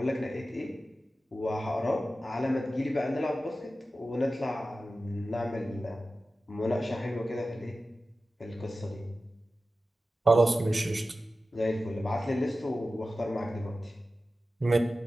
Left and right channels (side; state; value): both; normal; correlation 0.94